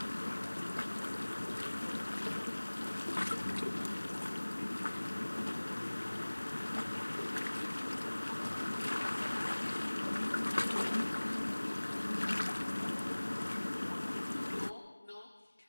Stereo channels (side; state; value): both; inverted; correlation -1.00